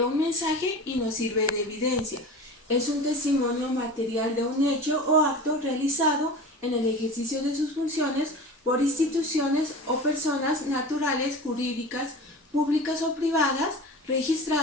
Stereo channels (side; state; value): both; normal; correlation 0.34